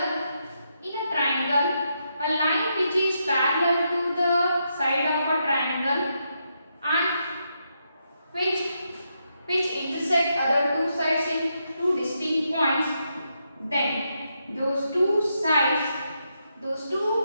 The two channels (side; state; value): both; inverted; correlation -0.81